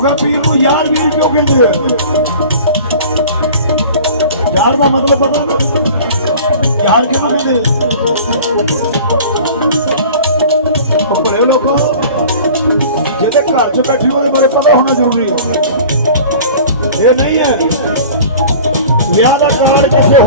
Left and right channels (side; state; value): both; inverted; correlation -0.42